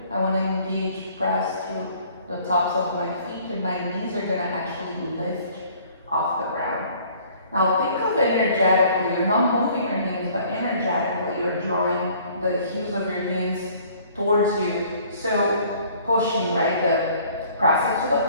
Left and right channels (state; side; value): inverted; both; correlation -0.55